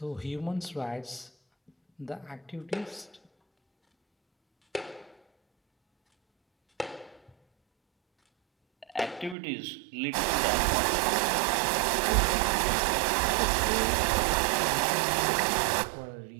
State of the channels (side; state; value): left; drops out; at 9.3 s